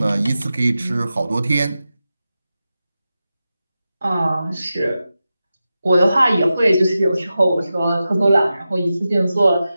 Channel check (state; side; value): inverted; both; correlation -0.92